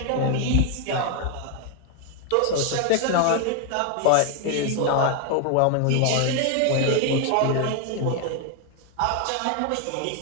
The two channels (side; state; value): both; different; correlation 0.01